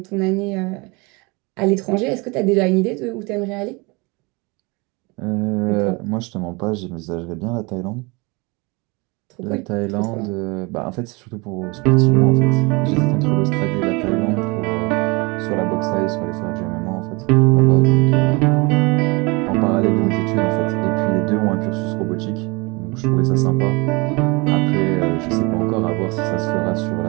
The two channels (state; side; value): quieter; left; 27.0 dB